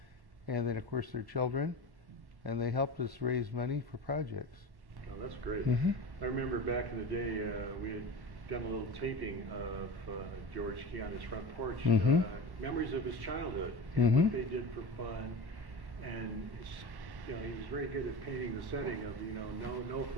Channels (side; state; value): left; late; 1.1 ms